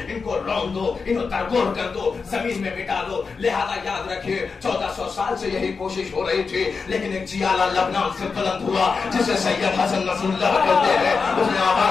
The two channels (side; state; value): right; quieter; 5.0 dB